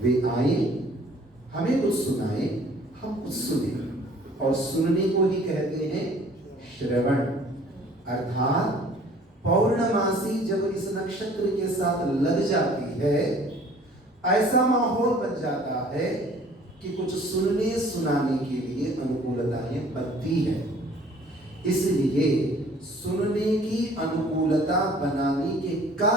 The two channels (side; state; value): both; normal; correlation 0.53